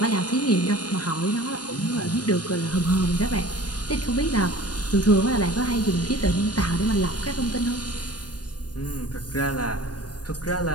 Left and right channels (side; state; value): right; late; 0.69 ms